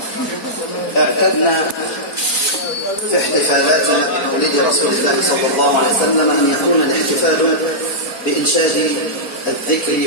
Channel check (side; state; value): right; late; 4.3 ms